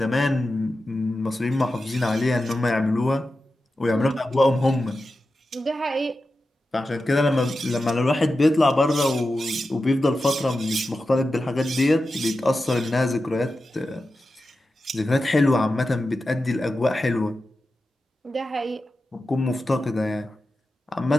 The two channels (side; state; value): both; normal; correlation 0.92